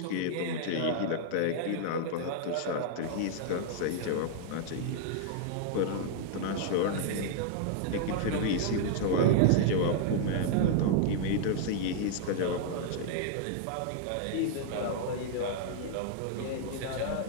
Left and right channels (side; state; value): both; different; correlation -0.01